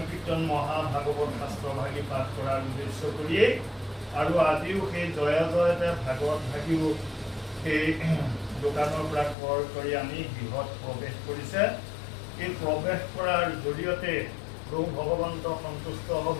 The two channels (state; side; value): drops out; right; at 9.3 s